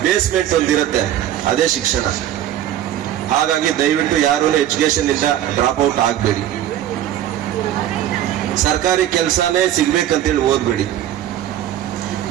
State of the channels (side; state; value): left; quieter; 11.8 dB